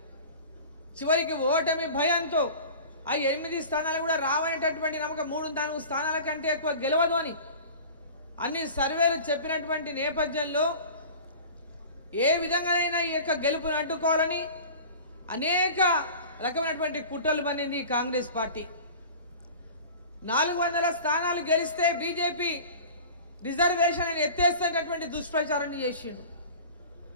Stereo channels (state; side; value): inverted; both; correlation -0.38